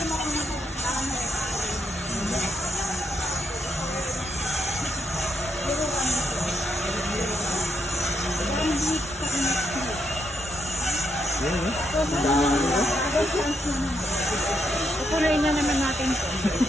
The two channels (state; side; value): normal; both; correlation 0.80